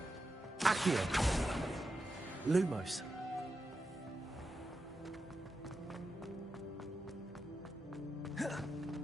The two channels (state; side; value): normal; both; correlation 0.89